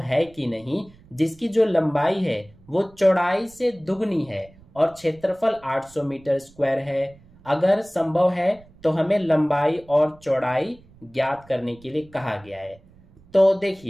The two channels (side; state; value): right; noise; rumble, 26 dB below the sound